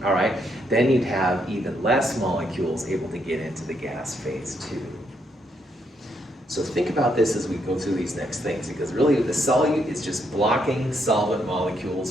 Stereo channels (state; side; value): normal; both; correlation 0.76